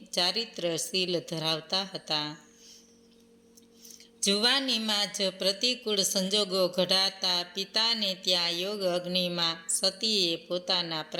ચારિત્રશીલ ધરાવતા હતા. જુવાનીમાં જ પ્રતિકૂળ સંજોગો ઘડાતા પિતાને ત્યાં યોગ અગ્નિમાં સતીએ પોતાના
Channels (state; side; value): identical; both; correlation 1.00